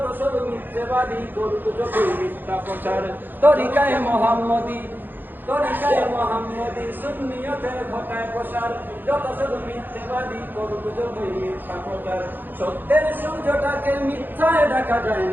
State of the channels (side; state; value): left; late; 0.091 ms